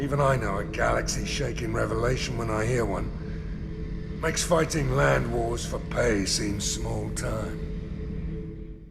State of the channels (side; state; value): both; identical; correlation 1.00